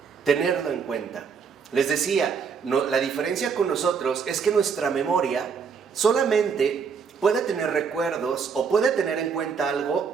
tenerlo en cuenta. Les decía, la diferencia con nosotros es que nuestra memoria solamente puede tener recuerdos o puede tener en cuenta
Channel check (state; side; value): quieter; left; 6.1 dB